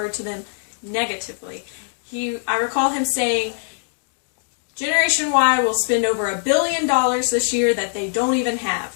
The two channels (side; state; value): right; silent; digital silence